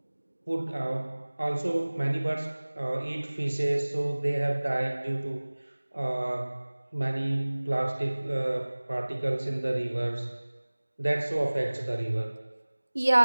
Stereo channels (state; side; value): inverted; both; correlation -1.00